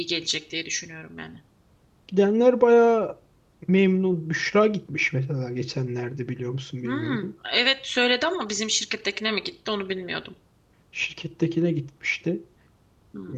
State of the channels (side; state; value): both; identical; correlation 1.00